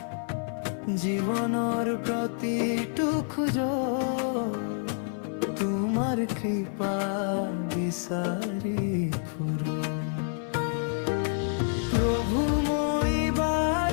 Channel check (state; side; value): silent; right; 56 dB below the other